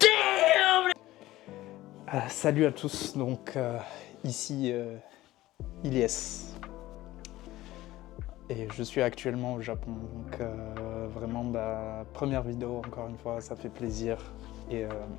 Salut à tous, donc ici Ilyes. Et je suis actuellement au Japon, donc vraiment première vidéo, encore une fois, ça fait plaisir. Et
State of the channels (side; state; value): right; quieter; 16.4 dB